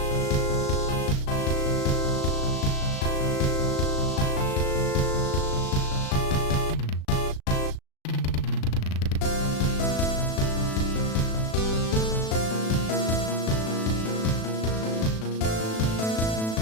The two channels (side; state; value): right; late; 36 ms